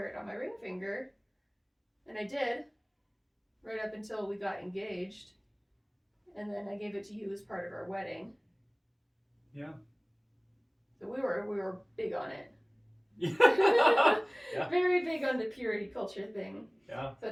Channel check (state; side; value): identical; both; correlation 1.00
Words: it on my ring finger, and I did, right up until we got engaged, and then I gave it to you as part of our wedding. Yeah. So we were big on it. Yeah. Very big on the purity culture thing. Yeah. So